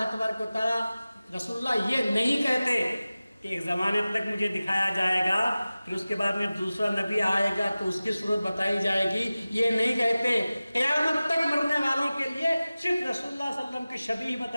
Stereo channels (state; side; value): inverted; both; correlation -0.97